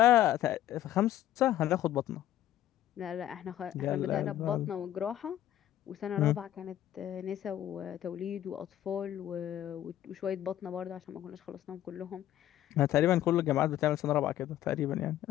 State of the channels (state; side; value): quieter; right; 12.6 dB